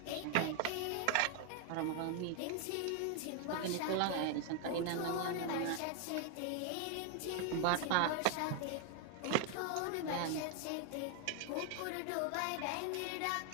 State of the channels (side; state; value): both; different; correlation 0.00